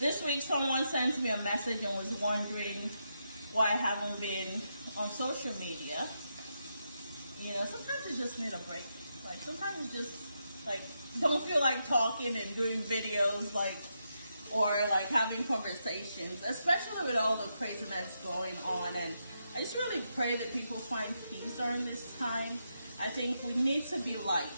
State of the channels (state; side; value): inverted; both; correlation -0.83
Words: week someone sent me a message and was wondering why I haven't been on social media. You know, sometimes you just need a break. Like sometimes you just like don't feel like talking and doing videos, like, or like having conversations, especially with all the craziness going on. And I just really pray that people find peace during this time. I think we need to be light.